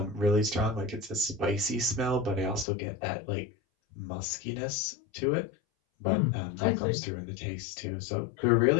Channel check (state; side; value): drops out; right; at 2.7 s